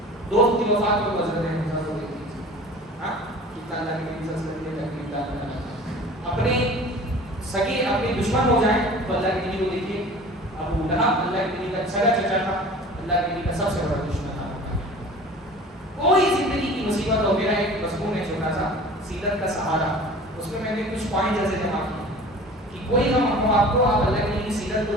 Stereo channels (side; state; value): both; normal; correlation 0.42